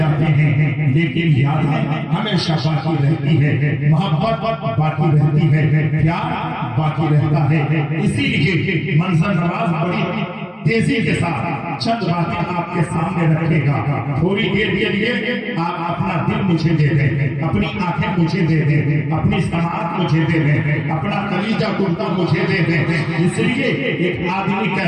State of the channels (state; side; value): identical; both; correlation 1.00